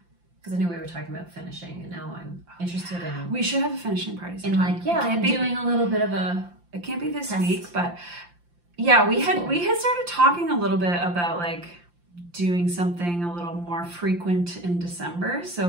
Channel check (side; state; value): left; late; 5.8 ms